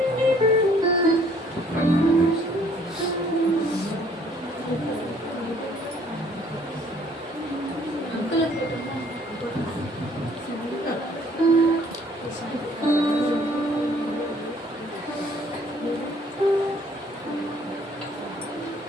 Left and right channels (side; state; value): both; normal; correlation 0.60